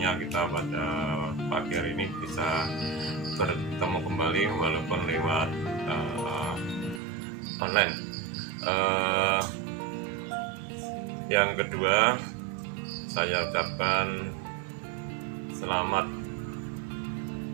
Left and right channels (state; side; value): drops out; left; at 7.0 s